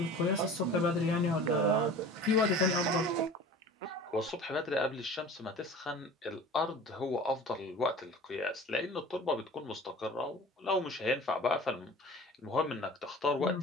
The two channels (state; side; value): normal; both; correlation 0.41